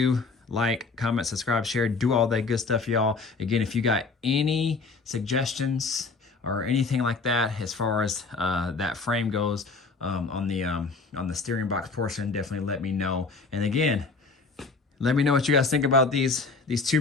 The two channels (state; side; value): quieter; right; 4.1 dB